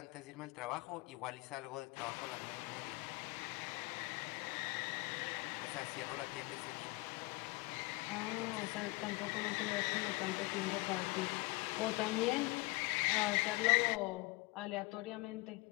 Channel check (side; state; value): right; quieter; 23.3 dB